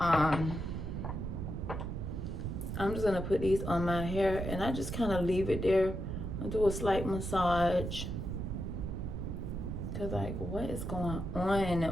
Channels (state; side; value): noise; right; rumble, 4 dB below the sound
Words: I'm just gonna put these on my hair, and I just kind of leave it there. I do a slight massage, cause like, what is going